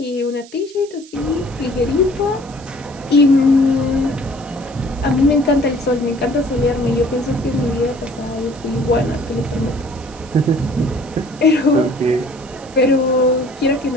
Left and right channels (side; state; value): right; noise; hiss, 22 dB below the sound